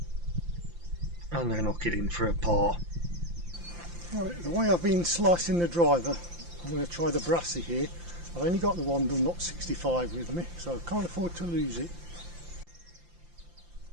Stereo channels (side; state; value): left; late; 5.8 ms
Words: And then knock it in for a par. Right, the way I've been slicing the driver, I'm going to try the brassy here. I've only got the one Dunlop 65 with me, so I can't afford to lose it.